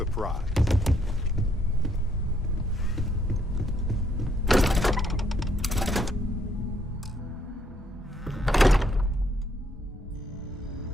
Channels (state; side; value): normal; both; correlation 0.71